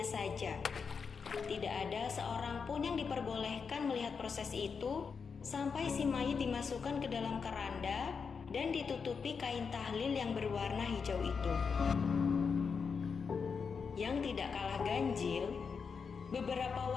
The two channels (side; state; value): right; quieter; 5.7 dB